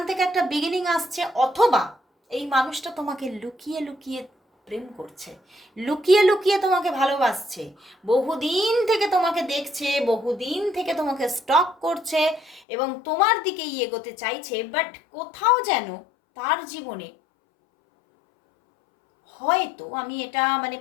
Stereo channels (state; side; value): drops out; right; at 12.6 s